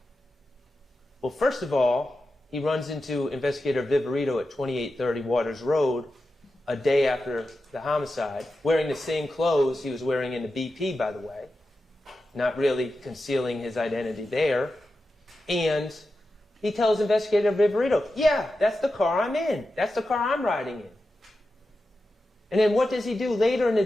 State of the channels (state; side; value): normal; both; correlation 0.91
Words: Well, first of all, he runs into Investigator Viverito at 2830 Waters Road a day after the homicide, wearing the same clothes he was wearing in the BP, by the way, not really concealing his identity there. And he tells Investigator Viverito, yeah, that's the car I'm in. That's the car I'm riding in. And then what does he do later in the